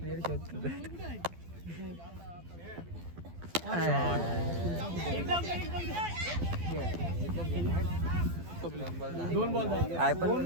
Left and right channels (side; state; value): left; late; 12 ms